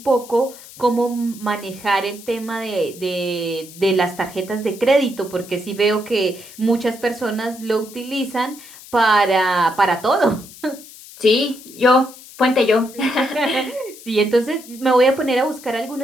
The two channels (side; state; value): left; noise; hiss, 18 dB below the sound